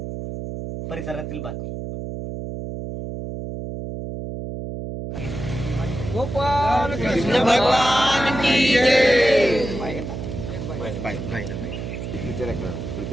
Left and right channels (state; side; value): noise; right; hum, 7 dB below the sound